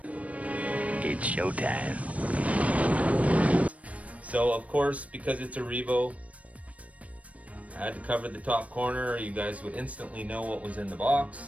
It's showtime. So of course, because it's a Revo, I had to cover the top corner. You guys would instantly know what was in the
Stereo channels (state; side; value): late; left; 0.066 ms